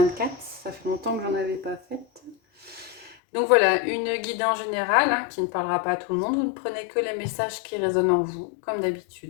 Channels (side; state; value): right; drops out; at 3.2 s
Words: Ça fait longtemps que j'en avais pas faite. Donc voilà, une guidance générale qui ne parlera pas à tout le monde. Vous ne prenez que les messages qui résonnent en vous, comme